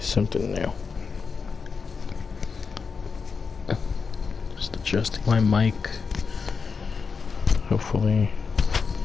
new. Just adjusting my mic. Hopefully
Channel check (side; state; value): right; quieter; 5.3 dB